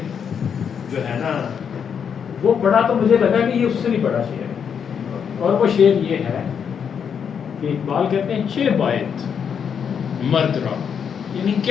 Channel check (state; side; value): quieter; right; 7.3 dB